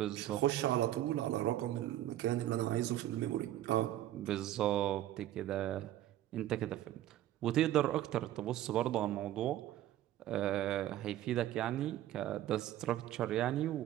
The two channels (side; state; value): left; quieter; 13.3 dB